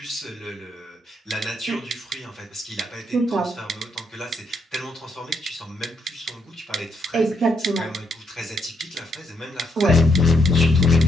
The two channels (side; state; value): both; normal; correlation 0.76